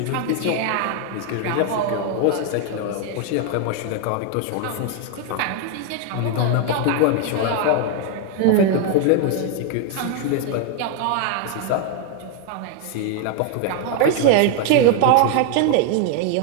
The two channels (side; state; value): both; different; correlation 0.01